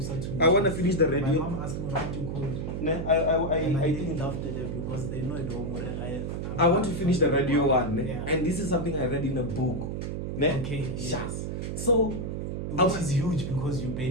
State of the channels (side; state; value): right; noise; hum, 4 dB below the sound